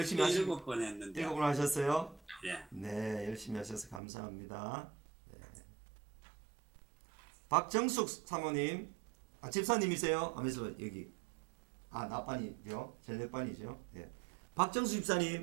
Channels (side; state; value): left; drops out; at 4.0 s